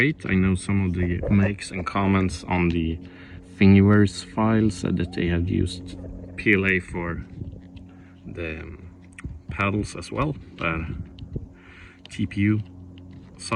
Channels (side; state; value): both; identical; correlation 1.00